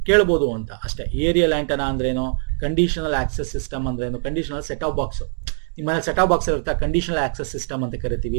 ಕೇಳ್ಬೋದು ಅಂತ ಅಷ್ಟೇ. ಏರಿಯಲ್ ಆಂಟನಾ ಅಂದ್ರೇನು, ಕಂಡೀಷನಲ್ ಆಕ್ಸೆಸ್ ಸಿಸ್ಟಮ್ ಅಂದ್ರೇನು, ಕಂಡೀಷನಲ್ ಸೆಟ್ ಆಫ್ ಬಾಕ್ಸ್ ನಿಮ್ಮ ಸೆಟ್ ಆಫ್ ಬಾಕ್ಸ್ ಇರುತ್ತೆ, ಕಂಡೀಷನಲ್ ಆಕ್ಸೆಸ್ ಸಿಸ್ಟಮ್ ಅಂತ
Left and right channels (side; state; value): left; silent; 64 dB below the other